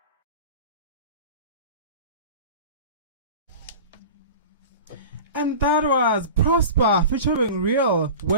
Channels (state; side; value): inverted; both; correlation -0.35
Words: And that was Prosper featuring Real